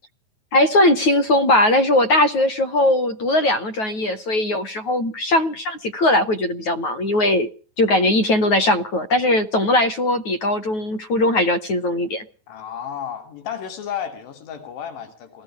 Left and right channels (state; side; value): late; right; 9.3 ms